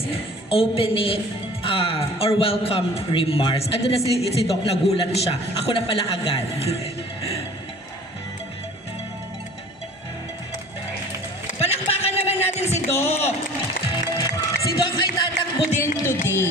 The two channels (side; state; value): both; normal; correlation 0.47